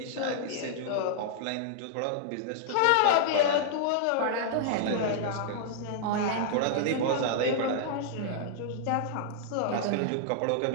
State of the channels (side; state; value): both; different; correlation -0.01